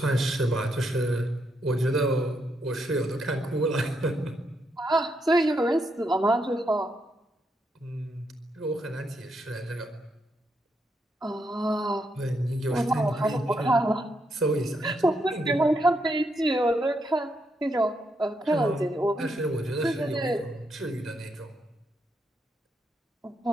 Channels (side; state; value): both; normal; correlation 0.80